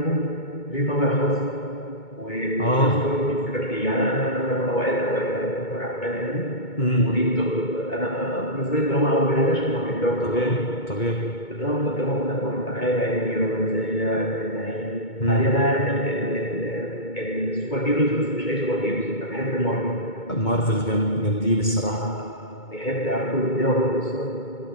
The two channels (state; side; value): late; right; 2.2 ms